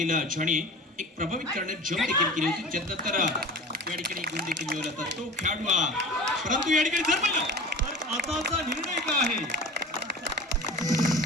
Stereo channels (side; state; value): both; normal; correlation 0.36